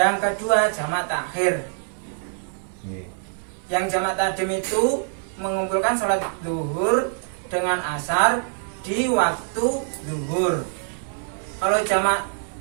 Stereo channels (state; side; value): silent; left; 62 dB below the other